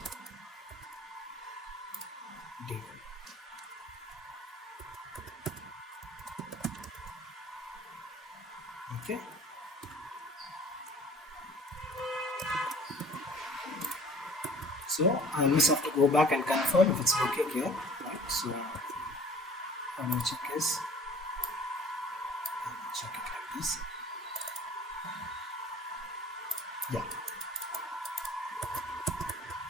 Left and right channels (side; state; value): both; normal; correlation 0.49